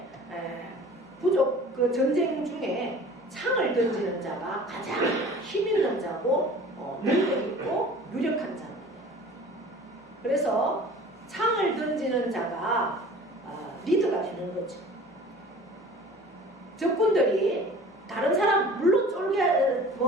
부족 그 전쟁 중에 창을 던지는 자가 가장 힘 있는 자고 능력 있고 유력한 자입니다. 그래서 창을 던지는 자가 리더가 되는 거죠. 적군들이 다른 사람 물론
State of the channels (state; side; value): normal; both; correlation 0.44